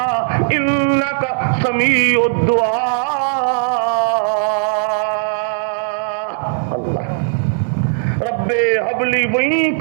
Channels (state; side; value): silent; left; 68 dB below the other